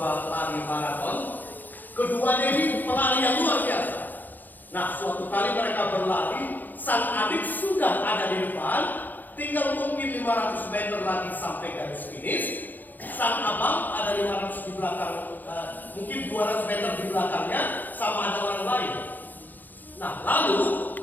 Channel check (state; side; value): late; right; 0.086 ms